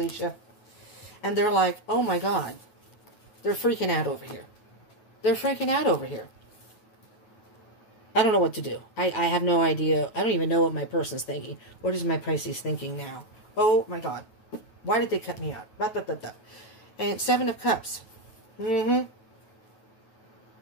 And they're like, oh my God. They're freaking out over here. They're freaking out over here. I don't know what to do. I have no idea. I don't even know what my person's thinking. What is my Pisces thinking now? Oh my God. Why did they cut me out? Blah, blah, blah, blah. And Seven of Cups. You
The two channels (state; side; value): late; right; 9.3 ms